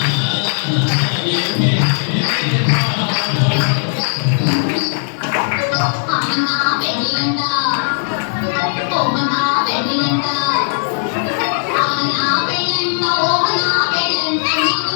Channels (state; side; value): silent; right; 68 dB below the other